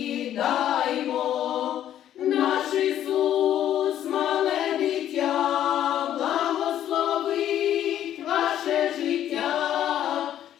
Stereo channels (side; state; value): right; quieter; 11.2 dB